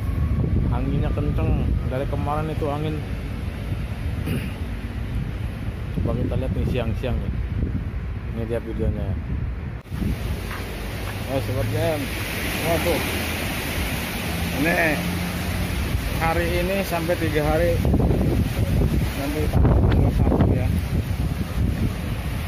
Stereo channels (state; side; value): identical; both; correlation 1.00